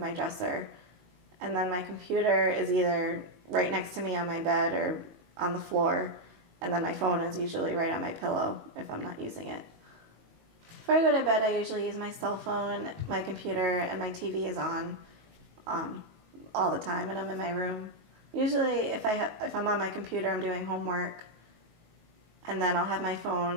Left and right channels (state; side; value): late; left; 19 ms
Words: dresser, and then my computer is either right next to me on my bed or on the floor, and then my phone is usually right on my pillow if I'm not using it. Before I go to bed, I usually use my cell phone, my computer, and my TV is on all the time, and I'm in my room. Usually, if I'm on my computer, I'm doing homework, and then I'll have my